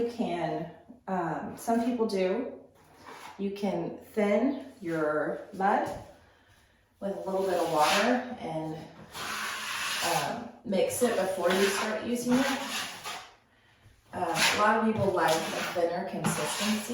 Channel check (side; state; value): both; identical; correlation 1.00